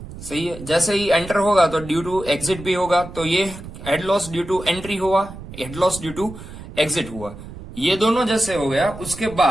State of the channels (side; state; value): right; noise; rumble, 13 dB below the sound